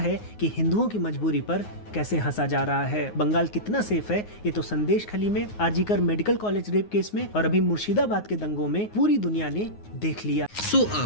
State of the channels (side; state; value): right; late; 9.5 ms